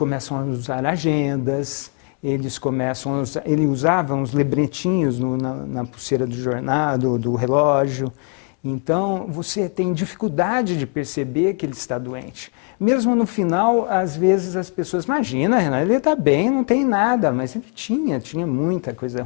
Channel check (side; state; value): right; quieter; 38.2 dB